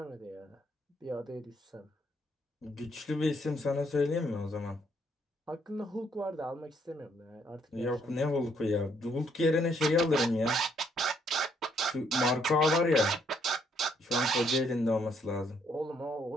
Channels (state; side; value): normal; both; correlation 0.70